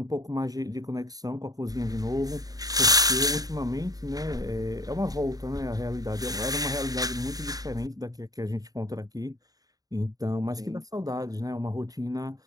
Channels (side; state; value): left; late; 0.18 ms